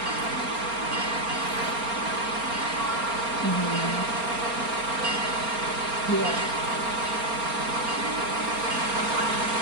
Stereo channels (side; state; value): left; late; 4.3 ms